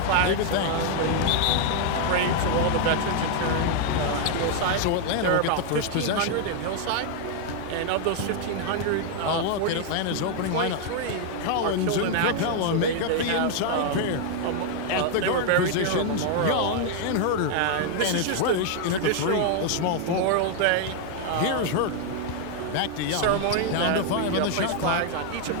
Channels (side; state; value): both; different; correlation 0.00